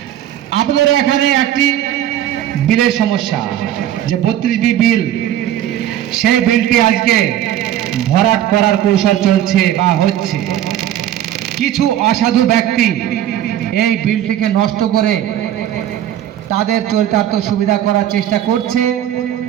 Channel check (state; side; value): quieter; left; 11.7 dB